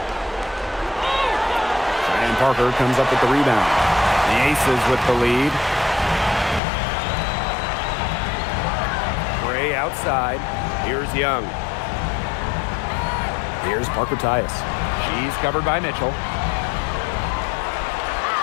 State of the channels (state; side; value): drops out; right; at 6.6 s